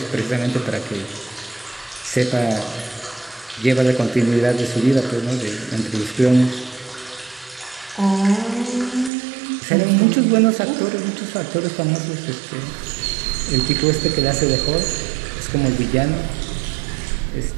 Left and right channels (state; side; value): drops out; left; at 9.1 s